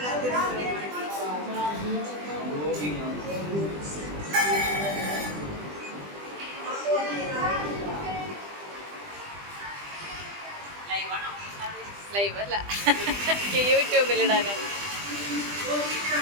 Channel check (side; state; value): left; late; 20 ms